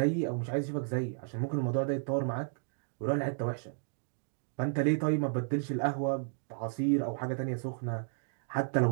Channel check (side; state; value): left; silent; digital silence